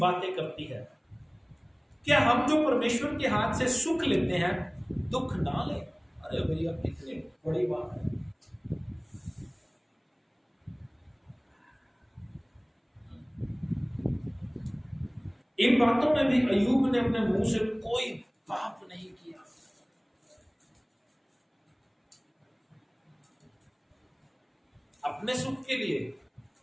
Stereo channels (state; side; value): identical; both; correlation 1.00